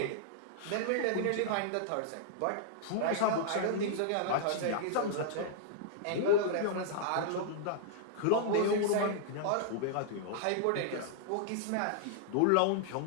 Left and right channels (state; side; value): different; both; correlation -0.01